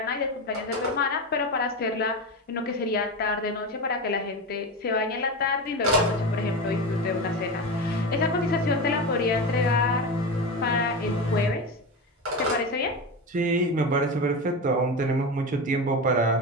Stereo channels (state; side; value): normal; both; correlation 0.21